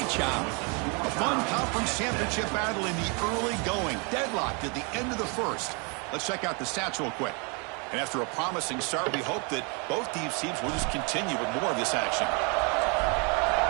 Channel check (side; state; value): left; quieter; 33.4 dB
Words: job. A fun conference championship battle in the early going. Deadlocked at the end of the first. Let's check out the stats real quick. And after a promising start, we hope that both these teams will just continue with more of this action.